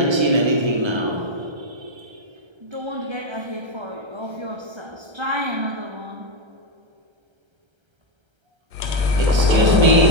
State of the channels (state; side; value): late; left; 1.3 ms